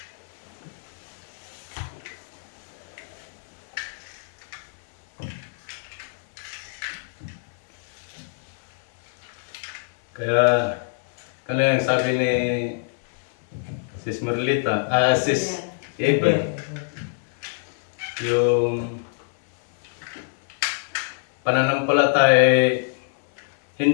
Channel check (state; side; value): silent; right; 59 dB below the other